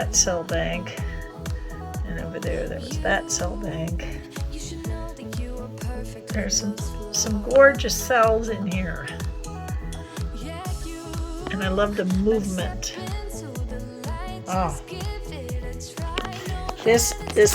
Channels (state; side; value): identical; both; correlation 1.00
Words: cell bank. And over there was that cell bank. There's some gorgeous cells in here. And I love the movement. Oh,